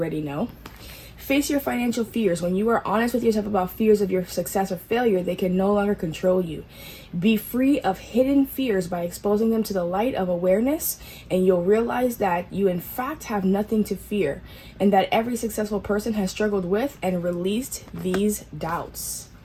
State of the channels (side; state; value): both; identical; correlation 1.00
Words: know. Face your financial fears. When you are honest with yourself about fears of your success or failure, they can no longer control you. Be free of hidden fears by exposing them to the light of awareness, and you'll realize that you in fact have nothing to fear, and that every successful person has struggled with and released these doubts.